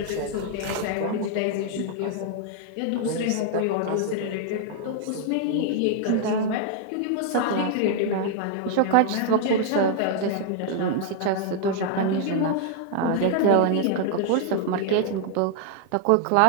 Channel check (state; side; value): different; both; correlation 0.00